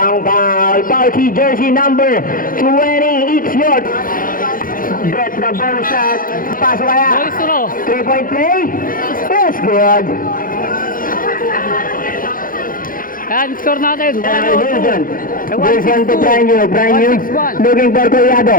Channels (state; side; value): late; right; 0.40 ms